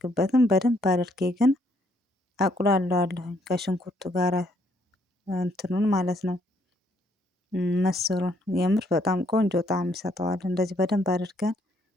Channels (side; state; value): both; normal; correlation 0.69